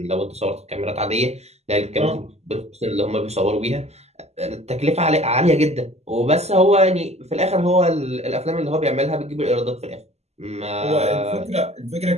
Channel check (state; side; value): late; left; 0.31 ms